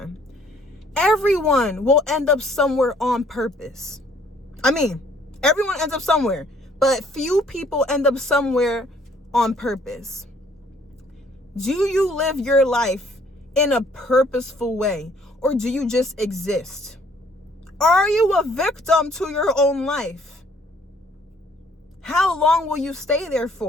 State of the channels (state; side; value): normal; both; correlation 0.61